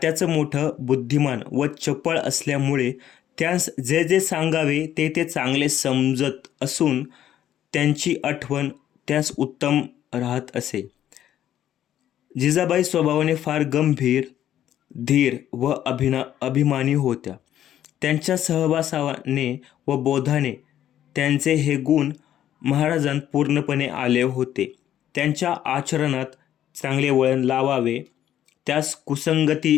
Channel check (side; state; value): right; quieter; 11.4 dB